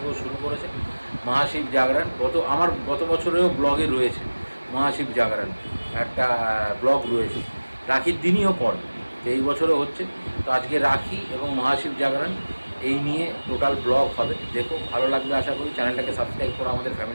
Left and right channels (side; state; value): both; inverted; correlation -1.00